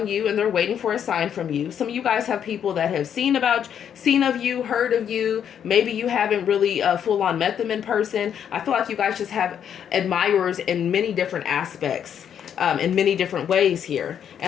you and they're waiting for a sign from you. Some of you guys have people that have seen of you, heard of you. Maybe you haven't really full on met them in person. I feel like you guys just have admirers in many different aspects. In many different ways here.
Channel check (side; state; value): right; quieter; 8.7 dB